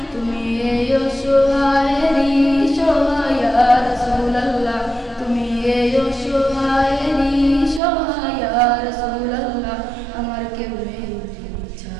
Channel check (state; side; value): drops out; left; at 7.8 s